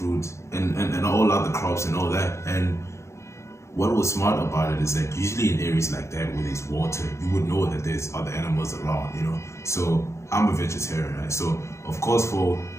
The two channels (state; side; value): late; right; 0.14 ms